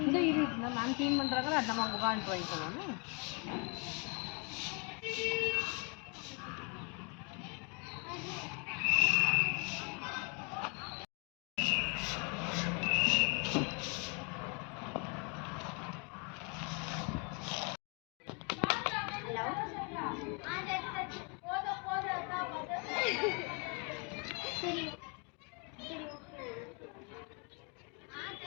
இது நான் க்ளீன் பண்றாங்க நம்ம புகான் ட்ரை பண்ணனும்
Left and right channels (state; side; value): quieter; right; 34.2 dB